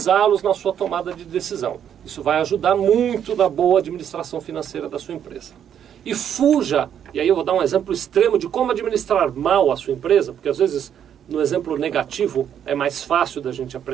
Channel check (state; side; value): quieter; left; 9.2 dB